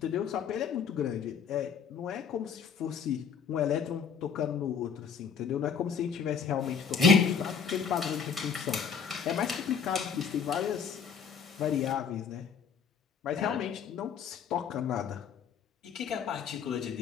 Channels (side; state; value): right; quieter; 6.6 dB